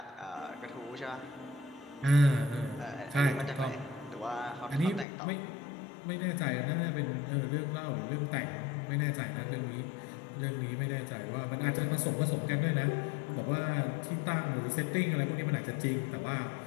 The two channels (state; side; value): drops out; right; at 5.1 s